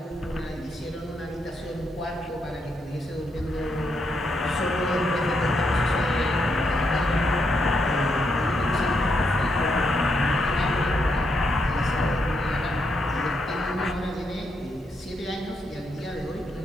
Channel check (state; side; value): normal; both; correlation 0.79